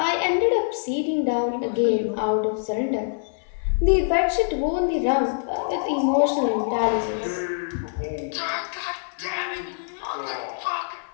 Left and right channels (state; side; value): silent; right; 56 dB below the other